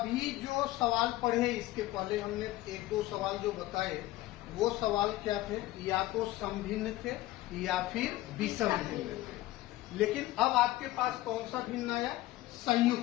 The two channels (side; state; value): right; quieter; 16.7 dB